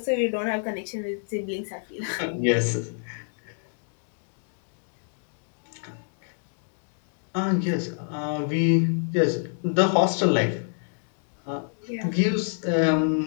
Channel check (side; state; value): right; silent; digital silence